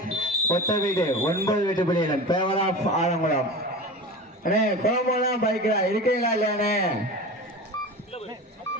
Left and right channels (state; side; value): normal; both; correlation 0.31